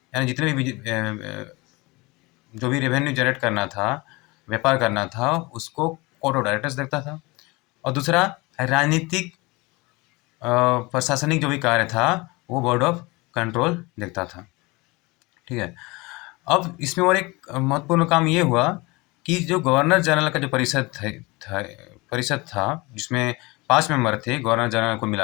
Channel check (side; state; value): right; quieter; 24.3 dB